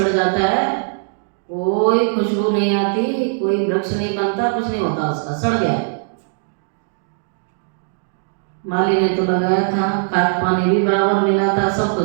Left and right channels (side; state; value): left; silent; digital silence